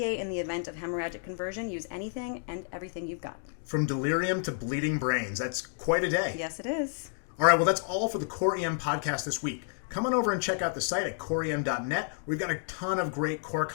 in the event of hemorrhagic conversion, use anything and everything you've got. From delirium to bleeding brains, that's quite a day. Yes, it is. All right, well, that's all for the Core EM podcast this week. Come on over and check out the site at coreem.net. We've got a ton of great core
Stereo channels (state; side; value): silent; right; digital silence